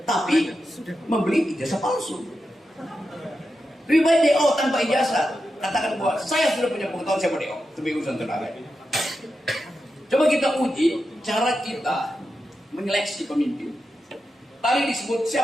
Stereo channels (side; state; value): both; normal; correlation 0.89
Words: tapi membeli ijazah palsu. Lebih baik DO tanpa ijazah. Katakan bahwa saya sudah punya pengetahuan, saya mau DO. Itu urusan tenaga. Coba kita uji cara kita menyeleksi pemimpin. Tadi disebut